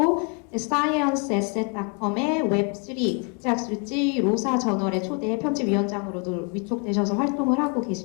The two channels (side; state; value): right; quieter; 36.9 dB